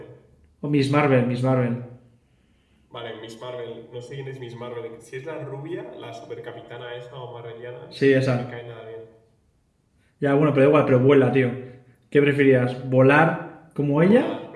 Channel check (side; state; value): both; identical; correlation 1.00